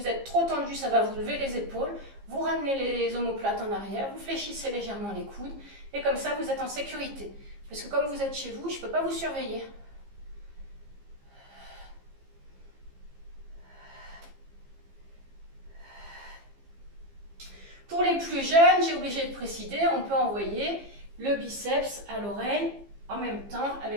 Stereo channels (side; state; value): left; late; 15 ms